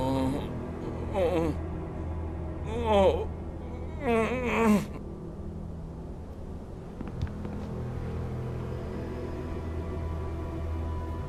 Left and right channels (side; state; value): both; identical; correlation 1.00